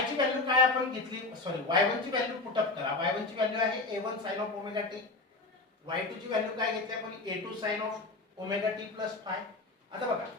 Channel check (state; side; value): quieter; right; 3.4 dB